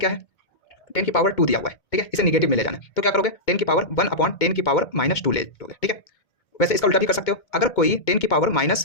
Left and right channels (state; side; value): late; right; 2.2 ms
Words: है, 10 की पावर 2 दिया हुआ है। ठीक है, इसे निगेटिव में ले जाना है तो क्या करोगे, 10 की पावर 1/10 की पावर -2 ले लोगे। ठीक है, वैसे इसका उल्टा भी कर सकते हो। अगर कोई 10 की पावर